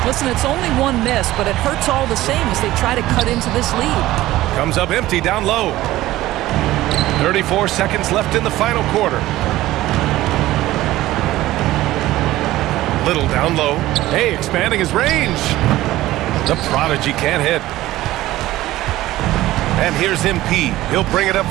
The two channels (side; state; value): left; quieter; 16.1 dB